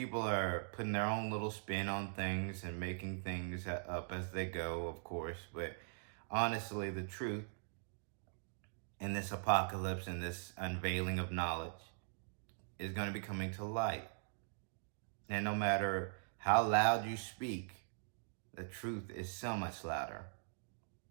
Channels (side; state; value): left; silent; digital silence